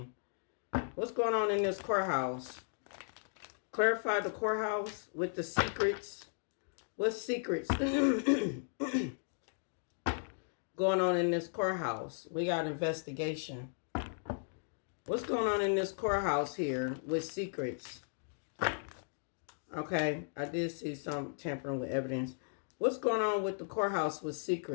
What's going on in this courthouse? Clarify the courthouse with the secrets. What secrets going on in this courthouse? We got investigation. What's going on in this courthouse here with secrets? Okay, I did see some tampering with evidence. What's going on with the courthouse with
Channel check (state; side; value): silent; right; digital silence